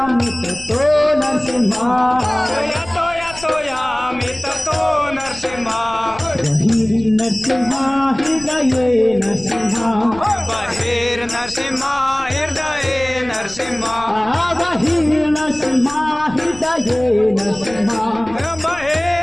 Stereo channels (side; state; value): left; noise; rumble, 18 dB below the sound